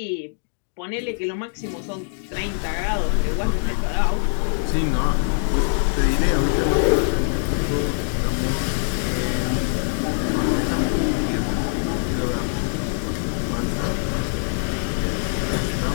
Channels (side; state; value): right; silent; digital silence